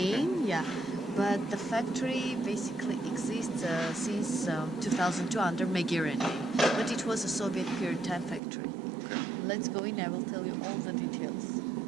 yeah. But the factory basically exists since 2002 under Megerian name. But it was a Soviet period time factory. Okay. Let's go in, I will tell you all the details.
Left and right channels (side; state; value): left; drops out; at 8.4 s